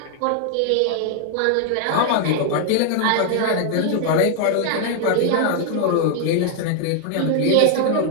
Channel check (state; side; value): different; both; correlation 0.00